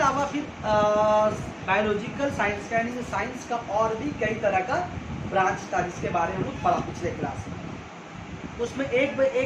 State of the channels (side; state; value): both; identical; correlation 1.00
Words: फिर बायोलॉजिकल साइंस का यानी कि साइंस का और भी कई तरह का ब्रांच था जिसके बारे में हम लोग पढ़ा पिछले क्लास में। उसमें एक